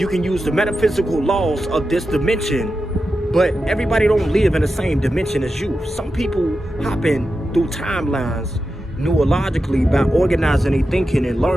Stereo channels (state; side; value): normal; both; correlation 0.90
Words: can use the metaphysical laws of this dimension, but everybody don't live in the same dimension as you. Some people hopping through timelines neurologically by organizing their thinking and